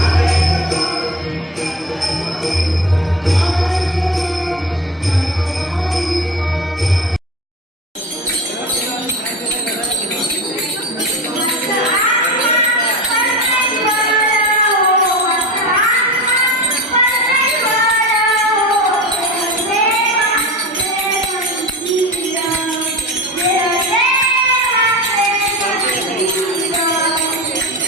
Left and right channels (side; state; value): both; normal; correlation 0.29